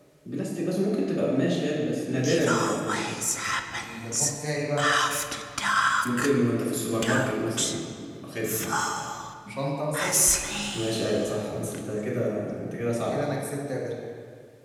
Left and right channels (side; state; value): both; identical; correlation 1.00